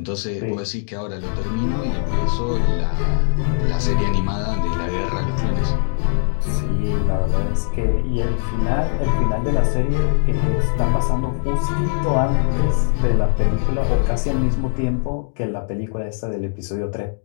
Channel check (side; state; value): right; silent; 65 dB below the other